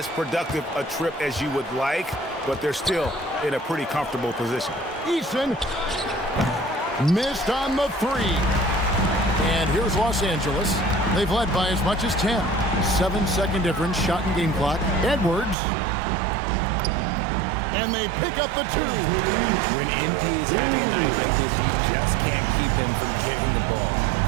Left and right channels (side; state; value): left; drops out; at 15.6 s